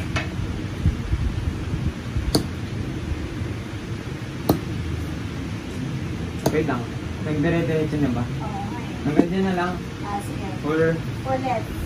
Wait lang. Nagdire-diretso na ba? Oo. Hanggang na lang. Sige. Or, Ulit.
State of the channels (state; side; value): identical; both; correlation 1.00